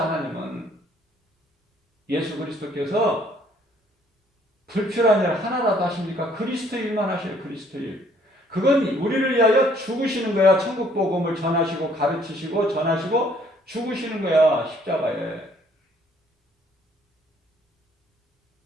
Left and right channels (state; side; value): normal; both; correlation 0.62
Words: 하나님은 예수 그리스도께서 불필요한 일 하나라도 하십니까? 그리스도 일만 하셔요. 그리스도 일. 그건 우리를 위하여 죽으시는 거야. 천국 복음을 전하시고 가르치시고 전하시고 죽으시는 거야. 십자가에.